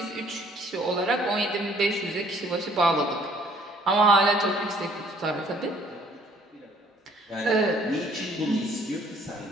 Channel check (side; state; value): both; normal; correlation 0.60